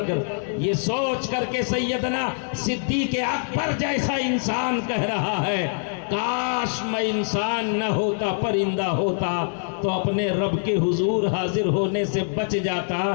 یہ سوچ کر کے سیدنا صدیق اکبر جیسا انسان کہہ رہا ہے کاش میں انسان نہ ہوتا، پرندہ ہوتا تو اپنے رب کے حضور حاضر ہونے سے بچ جاتا۔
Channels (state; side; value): silent; right; digital silence